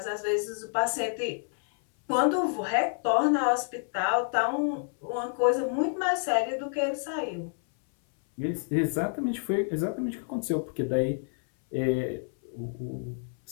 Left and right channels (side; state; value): right; silent; 59 dB below the other